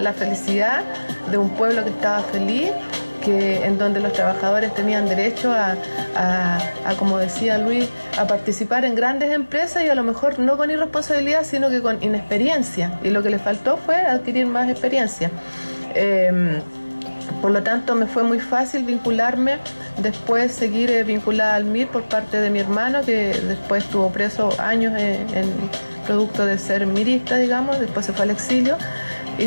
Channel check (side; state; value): both; inverted; correlation -1.00